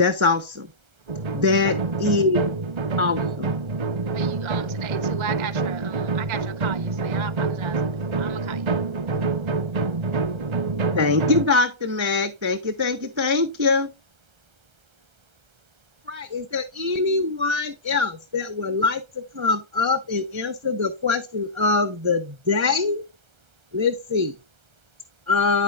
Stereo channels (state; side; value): late; left; 1.3 ms